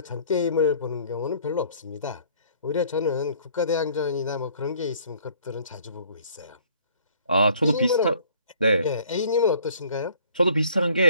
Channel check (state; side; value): inverted; both; correlation -0.56